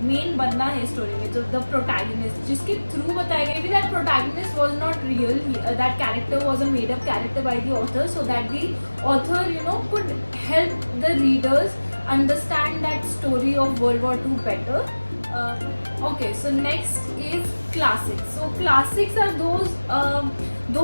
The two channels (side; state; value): both; inverted; correlation -1.00